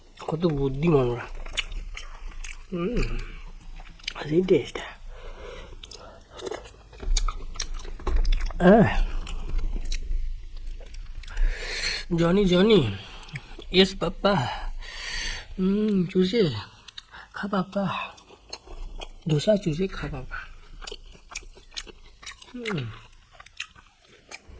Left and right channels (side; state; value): both; identical; correlation 1.00